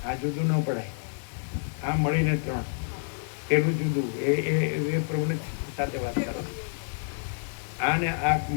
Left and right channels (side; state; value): right; silent; digital silence